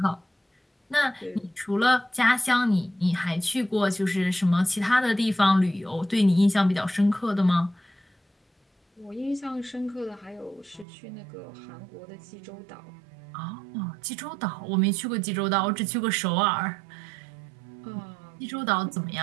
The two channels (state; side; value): drops out; left; at 10.9 s